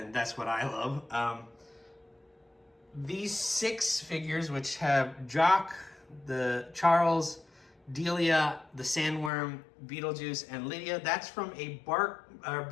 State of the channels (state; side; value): drops out; right; at 9.3 s